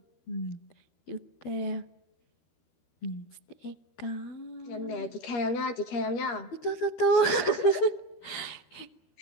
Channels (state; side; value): late; right; 12 ms